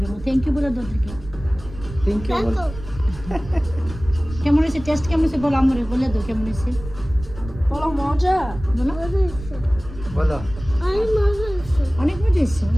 থ্যাংক ইউ বলে দাও থেকে থ্যাংক ইউ কেমন হয়েছে টেস্ট কেমন হয়েছে বলো আমরে বলে দাও কেমন হয়েছে বলো মজা বলো বলো অনেক মজা হয়েছে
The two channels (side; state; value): right; noise; rumble, 13 dB below the sound